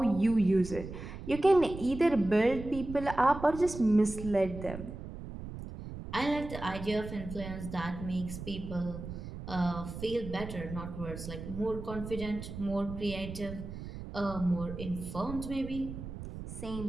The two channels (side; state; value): right; noise; rumble, 10 dB below the sound